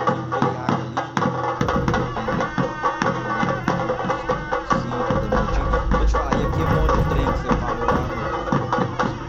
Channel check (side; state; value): both; identical; correlation 1.00